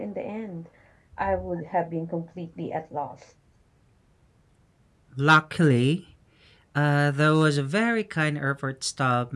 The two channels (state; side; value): identical; both; correlation 1.00